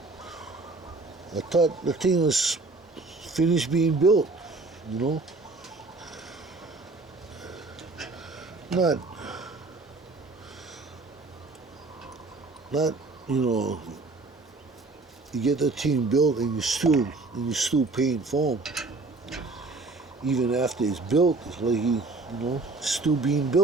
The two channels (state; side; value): quieter; left; 3.5 dB